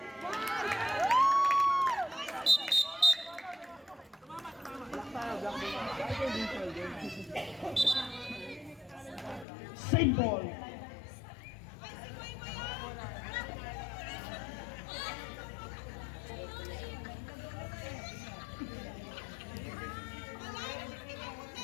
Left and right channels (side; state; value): right; drops out; at 9.5 s